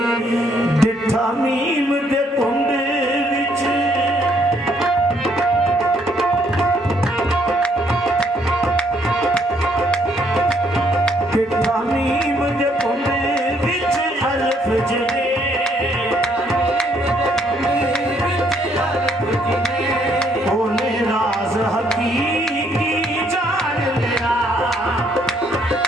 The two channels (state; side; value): normal; both; correlation 0.69